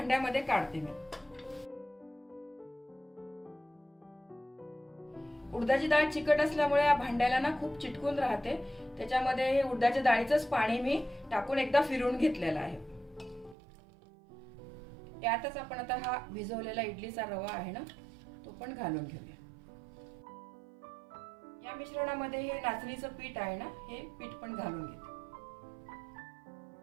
काढते मी। उडदाची डाळ चिकट असल्यामुळे या भांड्याला ना खूप चिटकून राहते, त्याच्यामध्ये हे उडदाच्या डाळीचंच पाणी मी टाकून एकदा फिरवून घेतलेलं आहे। यातच आपण आता हा भिजवलेला इडलीचा रवा आहे ना तो पण घालून घेऊया। या मिश्रणामध्ये हे नाचणीचं पीठ आहे ना हे पीठ पण घालून घेते।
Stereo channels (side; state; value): left; drops out; at 13.6 s